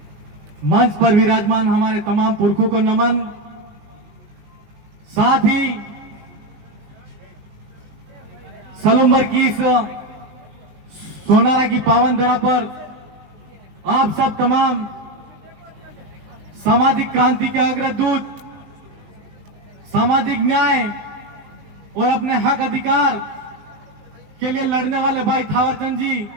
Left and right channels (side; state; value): left; late; 19 ms